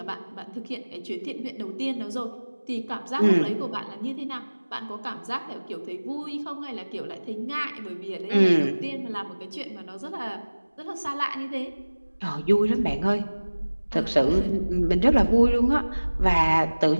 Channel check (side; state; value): both; inverted; correlation -1.00